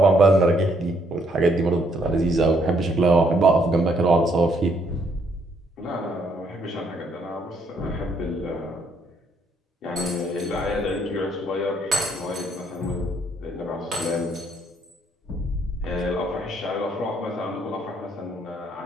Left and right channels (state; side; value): normal; both; correlation 0.70